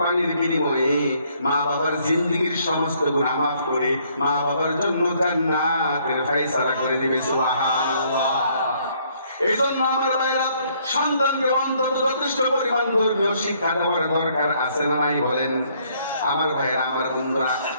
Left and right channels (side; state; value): both; inverted; correlation -0.66